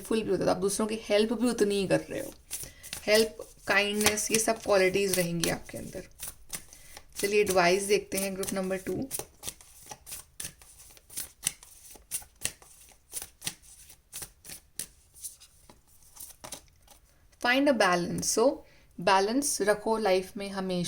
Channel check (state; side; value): identical; both; correlation 1.00